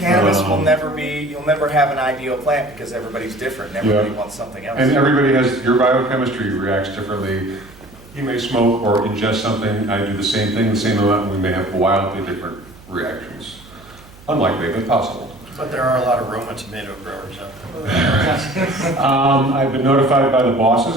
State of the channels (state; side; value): noise; right; hum, 22 dB below the sound